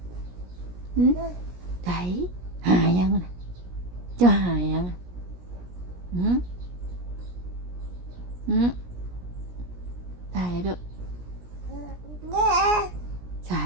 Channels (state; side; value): late; left; 17 ms